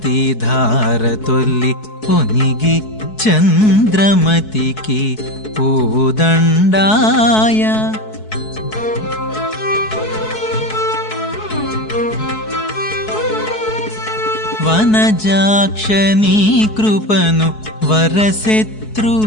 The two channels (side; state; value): right; late; 4.7 ms